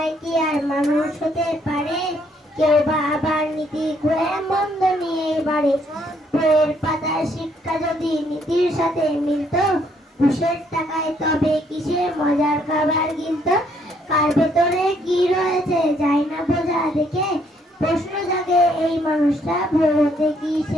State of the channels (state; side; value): normal; both; correlation 0.69